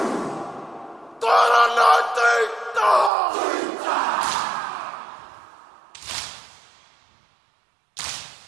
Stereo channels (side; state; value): left; drops out; at 3.1 s